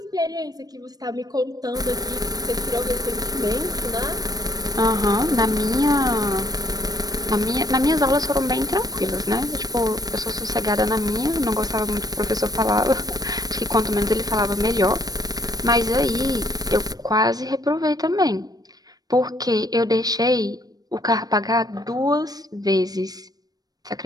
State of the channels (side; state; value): left; late; 0.19 ms